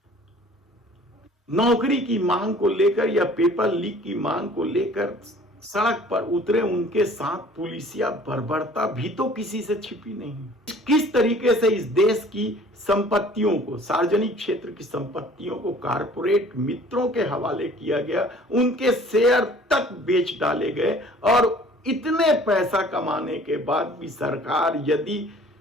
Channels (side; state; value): both; normal; correlation 0.51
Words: नौकरी की मांग को लेकर या पेपर लीक की मांग को लेकर सड़क पर उतरे, उनके साथ पुलिसिया बर्बरता भी तो किसी से छिपी नहीं। किस तरीके से इस देश की संपत्तियों को, सार्वजनिक क्षेत्र की संपत्तियों को कारपोरेट मित्रों के हवाले किया गया, उनके शेयर तक बेच डाले गए, और इतने पैसा कमाने के बाद भी सरकार यदि